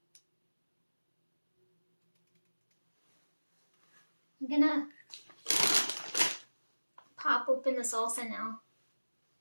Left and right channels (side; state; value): both; inverted; correlation -1.00